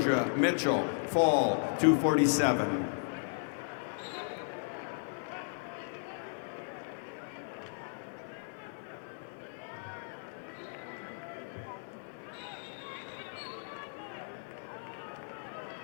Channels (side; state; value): right; silent; 54 dB below the other